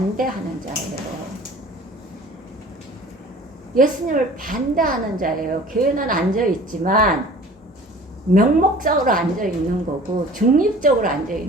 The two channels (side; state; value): both; normal; correlation 0.46